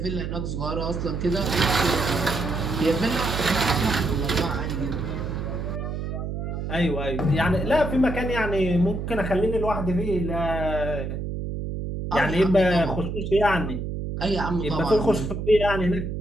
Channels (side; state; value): right; noise; hum, 4 dB below the sound